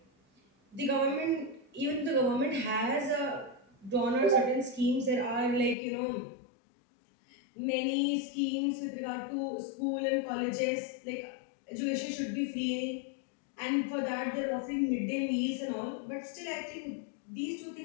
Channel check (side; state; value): right; drops out; at 5.8 s